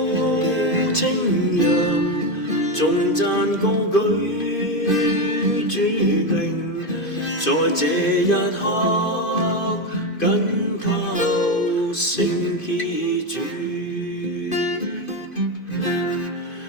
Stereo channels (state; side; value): late; right; 2.5 ms